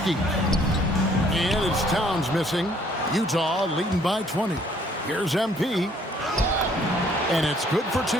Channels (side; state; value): both; normal; correlation 0.62